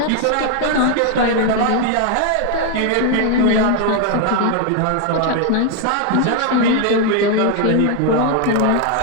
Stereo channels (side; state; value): both; different; correlation 0.01